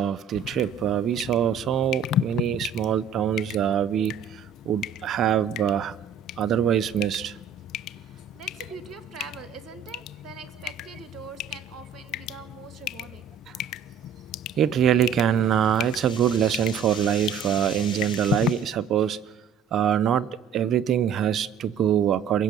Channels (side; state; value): left; quieter; 6.8 dB